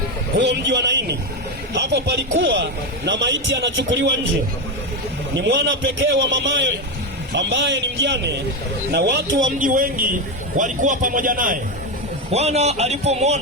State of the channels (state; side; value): normal; both; correlation 0.12